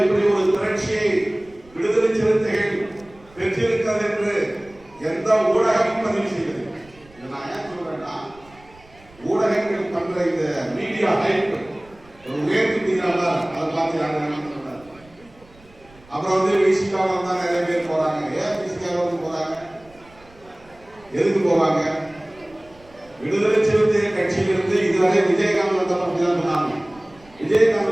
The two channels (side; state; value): right; noise; rumble, 27 dB below the sound